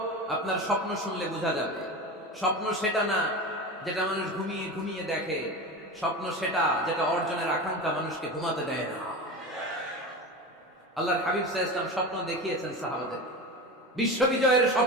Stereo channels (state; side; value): normal; both; correlation 0.26